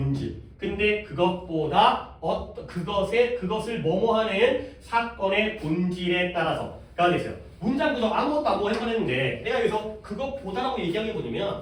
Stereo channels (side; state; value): both; identical; correlation 1.00